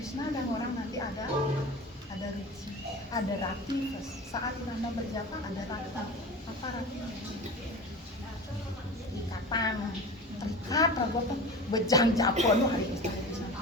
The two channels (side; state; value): both; normal; correlation 0.33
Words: dan orang nanti ada rici, ada rati saat Nanda berjapa ada rata apa rati ikatan terikat ragu apa bejang japon nu hari Krishna